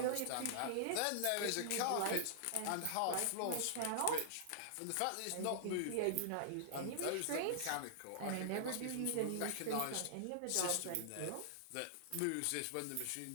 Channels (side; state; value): both; different; correlation -0.01